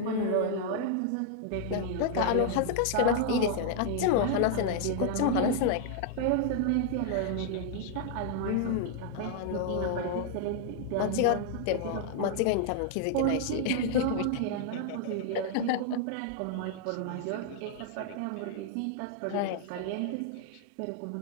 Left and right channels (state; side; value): different; both; correlation 0.00